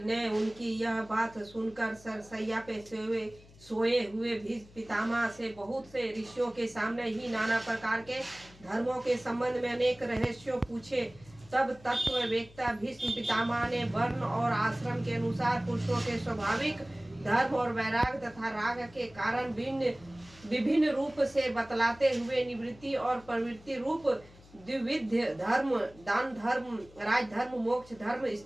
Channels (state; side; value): noise; left; hum, 23 dB below the sound